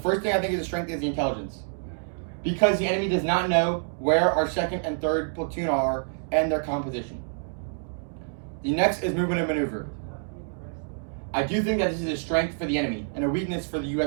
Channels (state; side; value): silent; left; digital silence